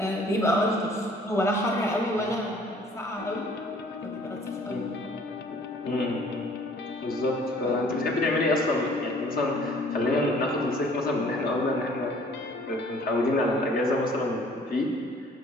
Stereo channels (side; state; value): both; normal; correlation 0.55